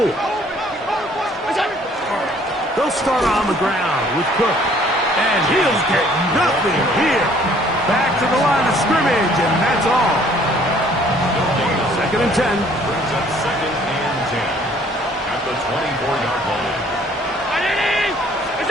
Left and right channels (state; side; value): normal; both; correlation 0.59